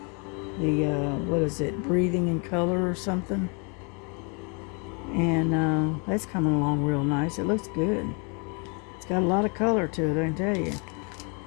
The, what is it, Breathing in Color or something. And that's coming along real nice. It looks good. It's got a lot of color to it, I can tell you.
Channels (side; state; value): right; quieter; 35.0 dB